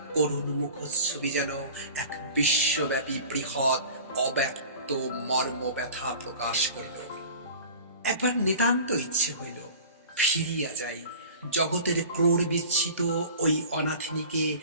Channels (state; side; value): inverted; both; correlation -0.40